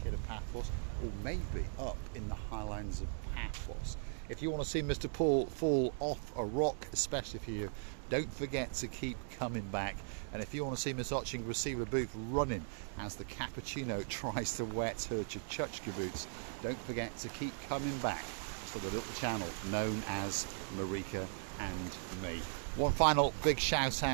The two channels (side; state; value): left; silent; digital silence